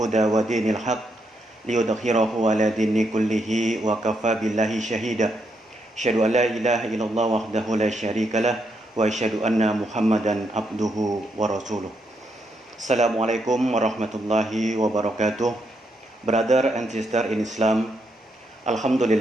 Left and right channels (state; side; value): normal; both; correlation 0.79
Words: wa dinil haq liyudhhirahu ala dini kullihi wa kafa billahi syahida. Asyhadu an la ilaha illallah wahdahu la syarikalah wa asyhadu anna Muhammadan abduhu wa rasuluh. Assalamualaikum warahmatullahi wabarakatuh. Brother and sister in Islam,